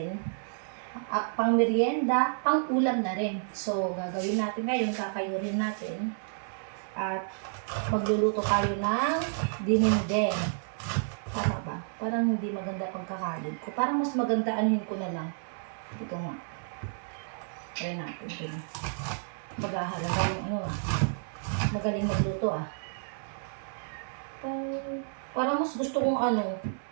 Pang merienda, pang ulam na rin. So, gagawin natin ngayon, kakayurin natin. At magluluto tayo ng dinengdeng. Tama ba? Parang hindi maganda pagkakalid ko. Parang mas maganda anuhin ko na lang. Ito nga. Try natin ito. Maghahalaga yung magaling magluto Parang mas gusto kong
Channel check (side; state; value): left; silent; 57 dB below the other